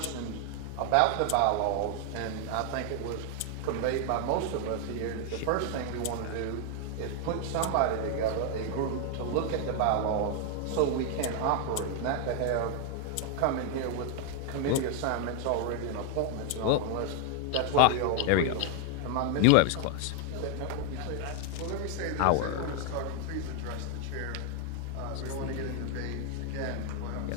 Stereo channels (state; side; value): different; both; correlation 0.00